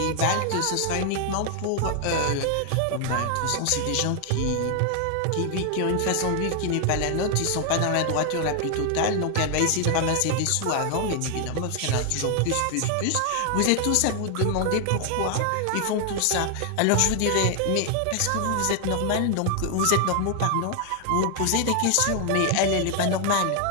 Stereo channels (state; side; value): different; both; correlation 0.00